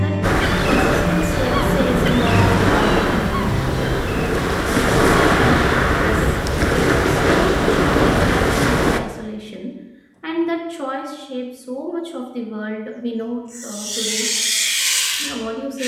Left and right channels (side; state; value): both; identical; correlation 1.00